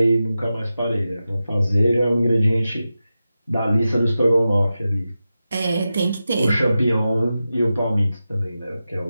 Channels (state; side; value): inverted; both; correlation -0.92